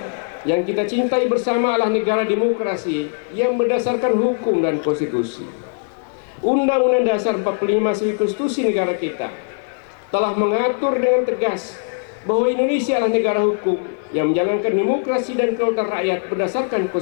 yang kita cintai bersama adalah negara demokrasi yang berdasarkan hukum dan konstitusi. Undang-Undang Dasar 45 sebagai konstitusi negara kita telah mengatur dengan tegas bahwa Indonesia adalah negara hukum yang menjalankan demokrasi dan kedaulatan rakyat berdasarkan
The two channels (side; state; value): right; silent; 63 dB below the other